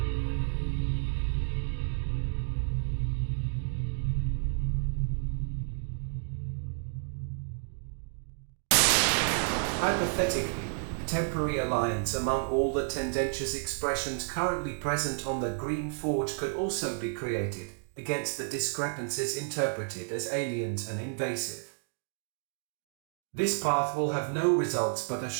Hypothetically, temporary alliance among all the tendentious expressions currently present on the green forge could also be created against the discrepancies interpreted as aliens and invasive. This path will have no results but a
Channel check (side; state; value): left; silent; digital silence